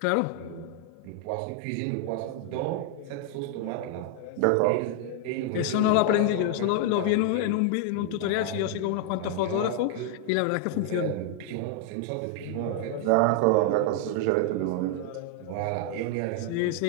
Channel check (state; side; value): different; both; correlation 0.00